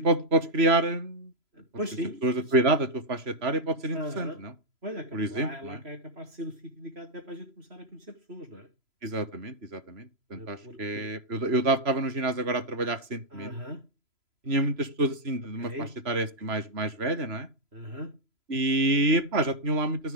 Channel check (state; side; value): late; left; 3.0 ms